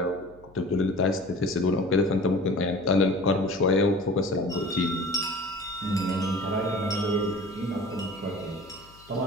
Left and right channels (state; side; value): noise; left; hum, 25 dB below the sound